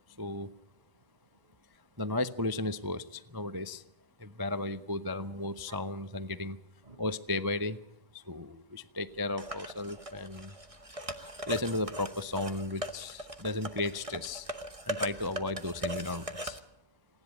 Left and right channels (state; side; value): late; left; 1.6 ms